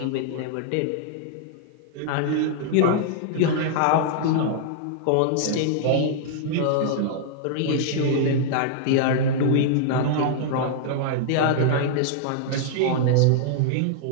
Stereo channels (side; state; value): both; different; correlation -0.01